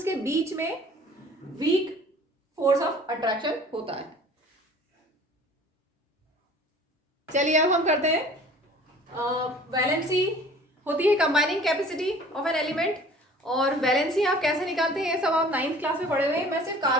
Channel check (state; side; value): normal; both; correlation 0.48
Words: के बीच में वीक फोर्स ऑफ अट्रैक्शन होता है। चलिए अब हम करते हैं वैलेंसी होती है combining capacity of an element. और वैलेंसी आप कैसे निकालते हैं ये सब आप 9th क्लास में पढ़े हुए हैं। मैं सिर्फ